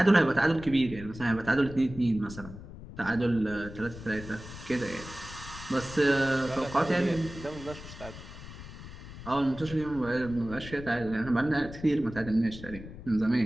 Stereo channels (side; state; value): left; noise; rumble, 14 dB below the sound